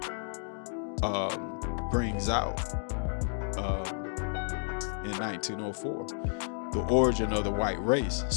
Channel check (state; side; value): silent; right; digital silence